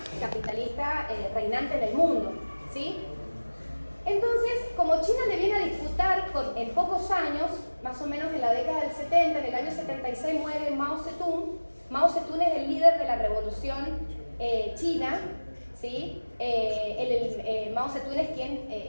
capitalista reinante en el mundo, ¿sí? Entonces, como China le viene a disputar en pocos años, más o menos en la década del 70, en el año 76 muere Mao Zedong. Mao Zedong es el líder de la revolución china, ¿sí? Mao Zedong es quien,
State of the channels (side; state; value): both; inverted; correlation -1.00